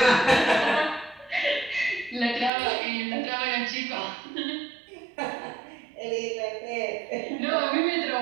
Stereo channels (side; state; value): left; drops out; at 2.5 s